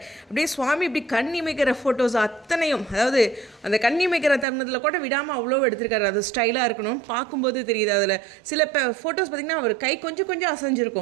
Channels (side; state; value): left; drops out; at 4.5 s